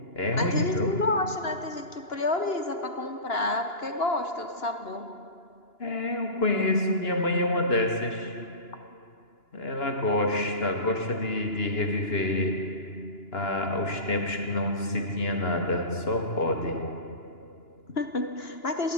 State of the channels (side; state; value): right; late; 2.9 ms